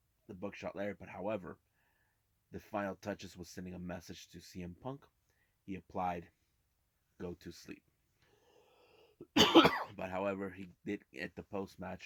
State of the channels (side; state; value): both; identical; correlation 1.00